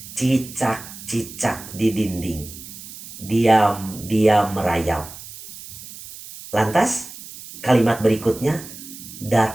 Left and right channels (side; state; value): right; noise; hiss, 14 dB below the sound